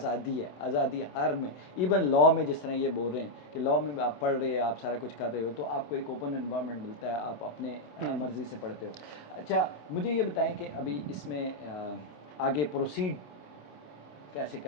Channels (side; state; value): right; late; 27 ms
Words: है, आज़ादी है हर में। इवन लॉ में जिस तरह ये बोल रहे हैं कि लॉ में आप पढ़ रहे हैं, आप सारा कुछ कर रहे हो, तो आपको एक ओपन एनवायरनमेंट मिलता है, आप अपने मर्ज़ी से पढ़ते हो। अच्छा, मुझे ये बताएं कि अभी इसमें आगे प्रोसीड कैसे